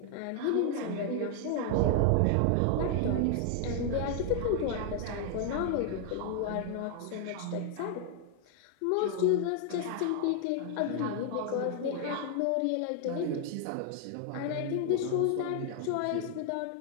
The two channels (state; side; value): different; both; correlation 0.00